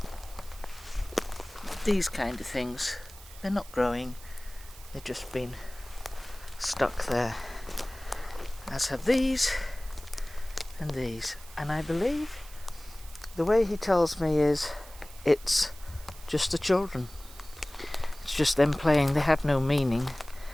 these kind of things. They're not growing, they've just been stuck there. As have these and these. And I believe the way he tells me is it's just the children. It's just them playing. They have no meaning.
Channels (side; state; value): right; noise; hiss, 19 dB below the sound